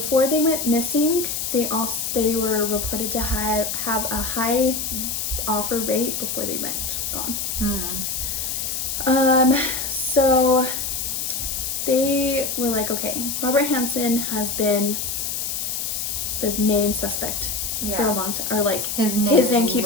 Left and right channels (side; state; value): left; noise; hiss, 2 dB below the sound